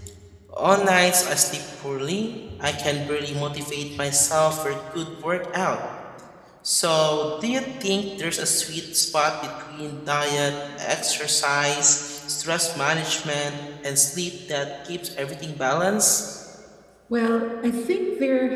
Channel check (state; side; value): identical; both; correlation 1.00